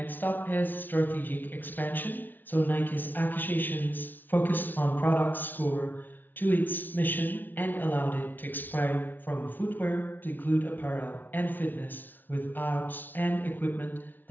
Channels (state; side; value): late; right; 0.088 ms